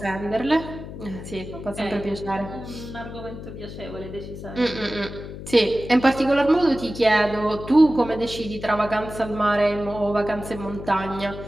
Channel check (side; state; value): left; noise; hum, 11 dB below the sound